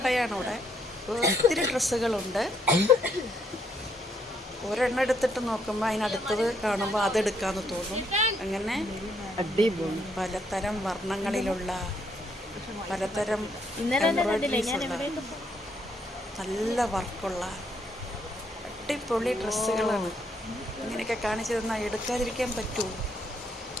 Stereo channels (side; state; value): both; normal; correlation 0.73